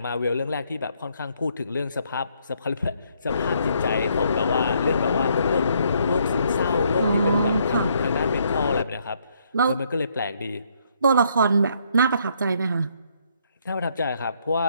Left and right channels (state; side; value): inverted; both; correlation -0.70